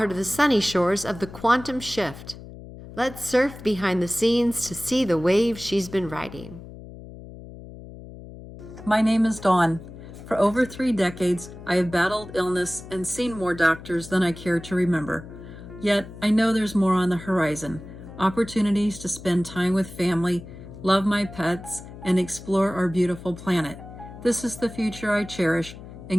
to the sunny shores of the quantum shift? Let's surf behind the scenes to see the waves she's been riding. My name is Dawn. For over 3 decades, I have battled illness and seen more doctors than I care to remember. Yet, I know there's more on the horizon. Opportunities to spend time with family, love my pets, and explore our beautiful planet. This is the future I cherish,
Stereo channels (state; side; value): noise; left; hum, 15 dB below the sound